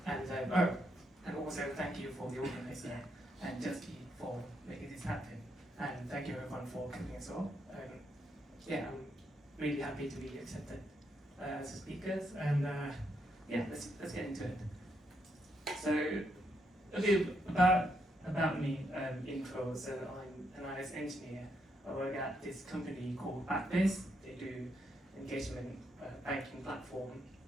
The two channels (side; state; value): both; normal; correlation 0.78